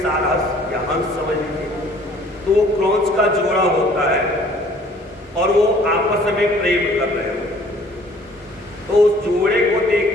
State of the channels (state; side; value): normal; both; correlation 0.55